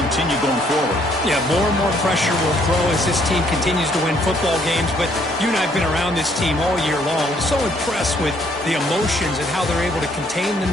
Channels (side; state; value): both; normal; correlation 0.66